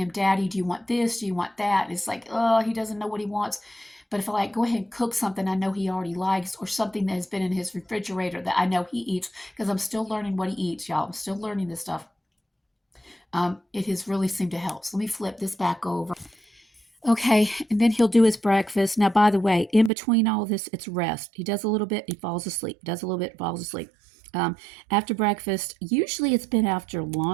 Daddy, do you want this? Do you want that? It's like, oh, he doesn't know what he wants. But if I go ahead and cook something I know he already likes, or something that has been in his refrigerator that I know he eats, because I'm still learning what he eats, y'all. I'm still learning this stuff. It has really seemed to help. So let me flip this back over. Okay, and then he'll do his breakfast. Now, by the way, in between all of this, it's rest. He does a little bit, he falls asleep. Does a little bit, falls asleep. After breakfast, usually it's been after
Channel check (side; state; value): left; drops out; at 19.9 s